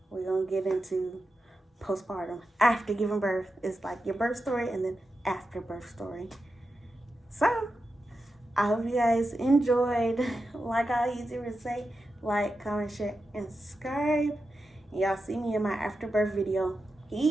we're gonna get into postpartum after giving birth. It's like your birth story and then after birth story. So I hope you guys enjoyed. Like I usually say, like, comment, share, and subscribe. And y'all see me in my after birth video.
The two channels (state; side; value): normal; both; correlation 0.90